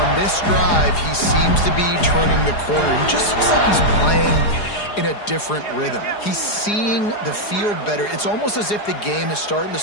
this drive, he seems to be turning the corner. He just looks like he's playing in a different rhythm. He's seeing the field better. It's almost as if the game is starting to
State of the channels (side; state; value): right; late; 4.8 ms